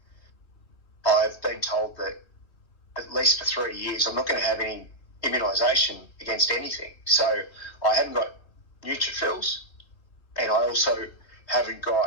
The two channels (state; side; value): late; right; 3.4 ms